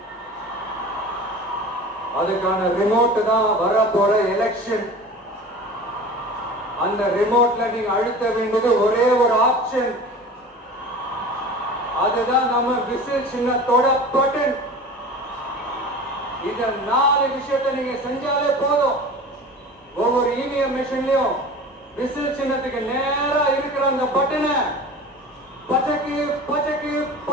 அதுக்கான ரிமோட் தான் வர போற எலெக்ஷன். அந்த ரிமோட்ல நீங்க அழுத்த வேண்டியது ஒரே ஒரு ஆப்ஷன். அதுதான் நம்ம விசில் சின்னத்தோட பட்டன். இந்த 4 விஷயத்தை நீங்க செஞ்சாலே போதும். ஒவ்வொரு இவிஎம் மிஷின்லயும் விசில் சின்னத்துக்கு நேரா இருக்கிற அந்த பட்டனை பச்சைக்கு பச்சைக்கு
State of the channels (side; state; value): both; normal; correlation 0.37